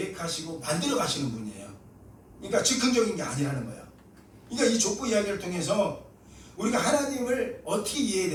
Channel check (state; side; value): identical; both; correlation 1.00